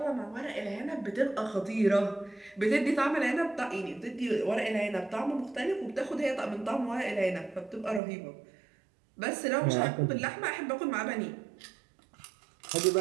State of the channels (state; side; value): drops out; left; at 8.0 s